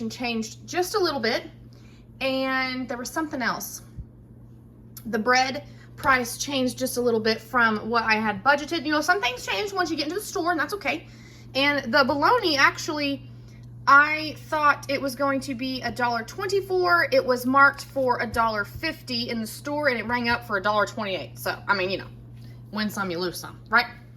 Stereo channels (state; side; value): identical; both; correlation 1.00